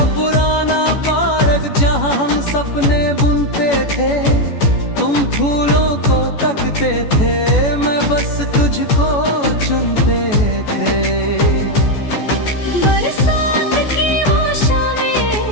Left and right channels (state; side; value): late; right; 14 ms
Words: पुराना पार्क जहाँ हम सपने बुनते थे। तुम फूलों को तकते थे, मैं बस तुझको चुनते थे। बरसात की वो शामें,